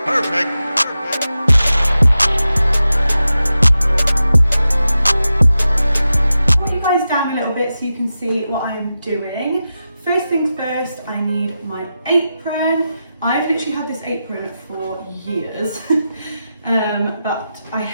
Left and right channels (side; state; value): both; inverted; correlation -0.91